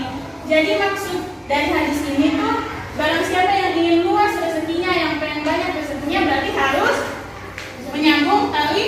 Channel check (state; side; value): identical; both; correlation 1.00